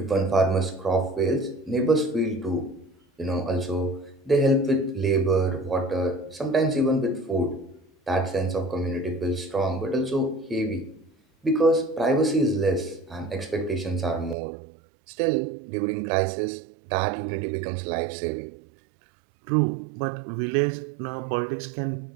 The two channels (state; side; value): drops out; left; at 14.4 s